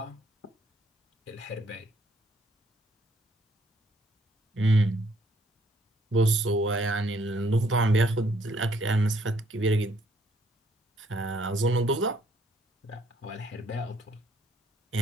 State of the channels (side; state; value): both; normal; correlation 0.67